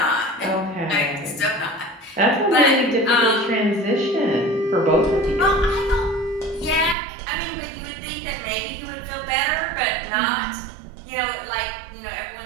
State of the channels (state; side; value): drops out; left; at 7.0 s